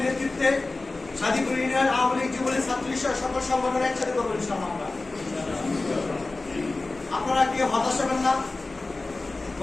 নেতৃত্বে সাদিপুর ইউনিয়ন আওয়ামী লীগ, যুবলীগ, ছাত্রলীগ সকল সংগঠন একসাথে করবো ইনশাআল্লাহ। আপনারা কেউ হতাশ হবেন না,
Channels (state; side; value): quieter; right; 3.3 dB